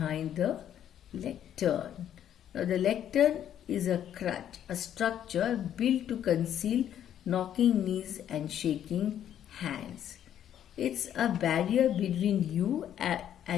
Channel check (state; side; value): quieter; right; 10.3 dB